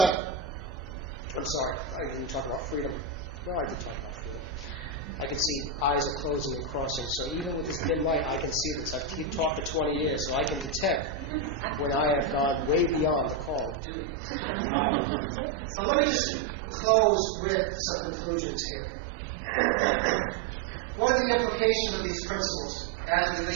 I'm sorry, I didn't talk about freedom. No, I did talk about freedom. I can see eyes are closing and crossing, so even with this dim light, I can see this. I've talked for 20 years, so I can detect when I have gone way beyond the call of duty. But let me just close with some conclusions here. What are the implications of these principles as it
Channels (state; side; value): drops out; left; at 13.8 s